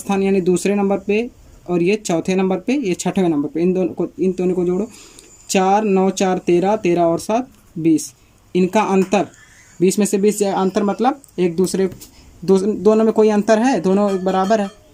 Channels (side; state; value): both; identical; correlation 1.00